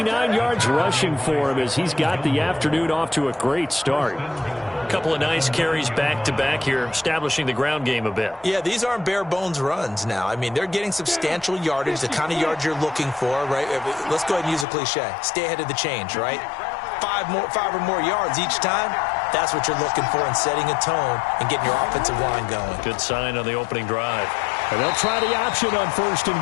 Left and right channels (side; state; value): right; drops out; at 14.7 s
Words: yards rushing for him as he's got the afternoon off to a great start. A couple of nice carries back-to-back here, establishing the ground game a bit. Yeah, these aren't bare-bones runs now. I mean, they're getting substantial yardage, the kind of yards you're looking for, right? Let's go ahead and use a cliche. Stay ahead of the change, right? 5 or more yards each time. That's what you're looking for in setting a tone and getting your offensive line going. Good sign on the opening drive. And they'll try the option on 1st and